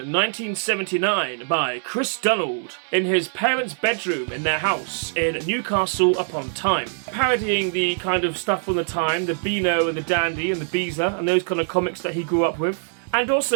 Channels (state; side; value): silent; left; digital silence